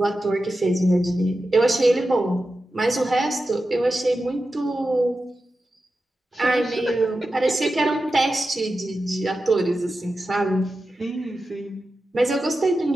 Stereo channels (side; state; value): both; normal; correlation 0.92